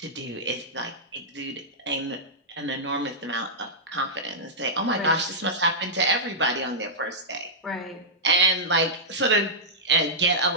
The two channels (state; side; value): normal; both; correlation -0.12